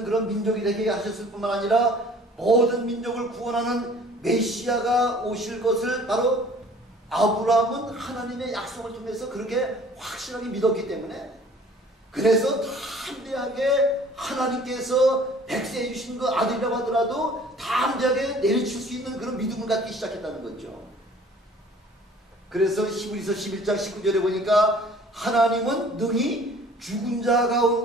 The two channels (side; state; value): both; normal; correlation 0.51